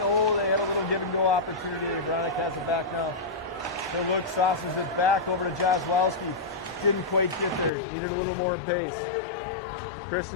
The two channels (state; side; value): drops out; right; at 7.7 s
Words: Oh, they had a little give and go opportunity. Veronica has it back now. He'll look, saucers it back over to Jozwowski. Didn't quite get there. Needed a little more pace.